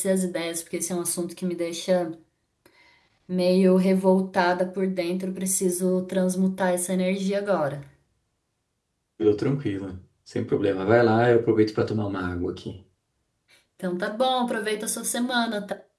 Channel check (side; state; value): both; identical; correlation 1.00